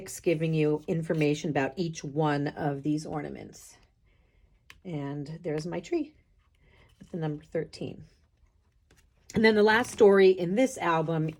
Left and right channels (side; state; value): both; identical; correlation 1.00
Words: giving you information about each one of these ornaments. And there's my tree with the number 13. And then the last story in this album